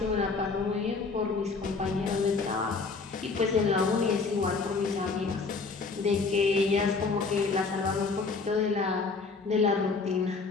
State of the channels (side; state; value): right; quieter; 4.3 dB